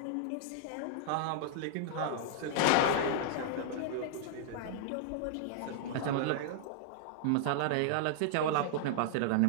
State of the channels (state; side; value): different; both; correlation -0.01